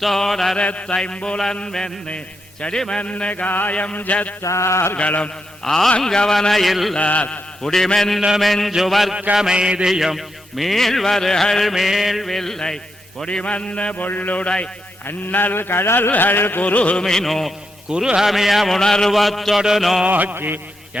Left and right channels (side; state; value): both; normal; correlation 0.83